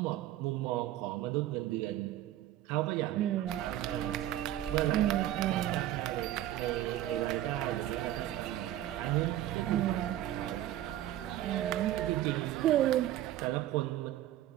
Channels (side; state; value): left; quieter; 13.4 dB